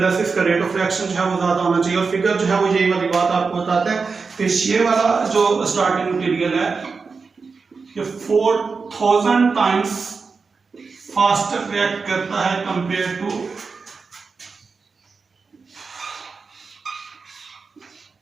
से इसका रेट ऑफ रिएक्शन जो है वो ज्यादा होना चाहिए। और फिगर जो है वो यही वाली बात आपको बताते हैं कि ये वाला जो स्टार्टिंग मटेरियल है ये 4000 टाइम्स फास्टर रिएक्ट करता है कंपेयर टू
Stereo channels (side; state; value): left; quieter; 4.8 dB